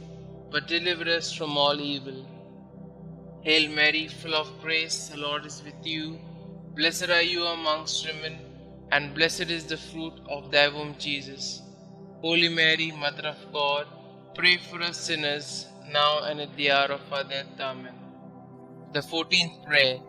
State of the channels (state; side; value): identical; both; correlation 1.00